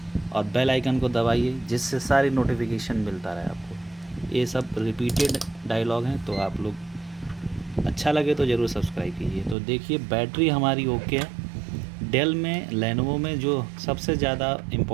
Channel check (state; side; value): drops out; left; at 9.6 s